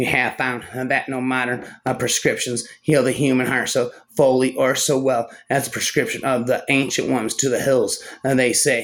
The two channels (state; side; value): identical; both; correlation 1.00